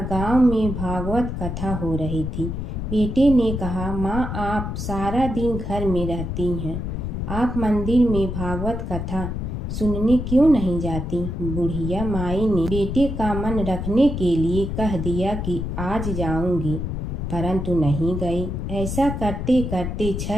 गांव में भागवत कथा हो रही थी। बेटे ने कहा, माँ, आप सारा दिन घर में रहती हैं, आप मंदिर में भागवत कथा सुनने क्यों नहीं जाती? बुढ़िया माई ने बेटे का मन रखने के लिए कह दिया कि आज जाऊंगी, परंतु नहीं गई। ऐसा करते करते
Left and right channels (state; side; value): noise; left; rumble, 4 dB below the sound